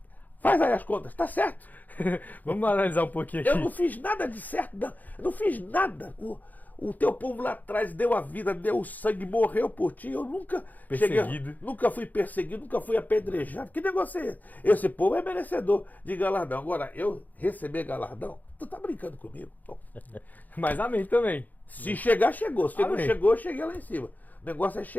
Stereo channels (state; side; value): late; right; 0.082 ms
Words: faz aí as contas, tá certo. Vamos analisar um pouquinho aqui. Eu não fiz nada de certo, não. Eu não fiz nada. O teu povo lá atrás deu a vida, deu o sangue, morreu por ti. Eu nunca nunca fui perseguido, nunca fui apedrejado. Que negócio é esse? Esse povo é merecedor de galardão. Agora, eu receber galardão? Tu tá brincando comigo? Bom, Mas amém também. se chegar, chegou. Se não Amém. chegou, eu cheguei lá em cima. O negócio é